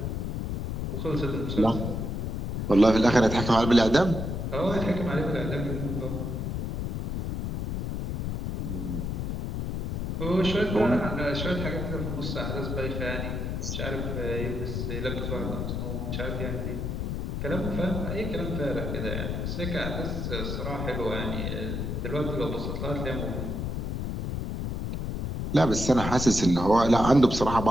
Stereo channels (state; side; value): noise; left; rumble, 2 dB below the sound